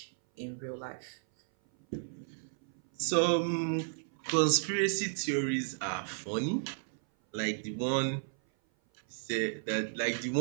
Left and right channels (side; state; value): left; silent; 56 dB below the other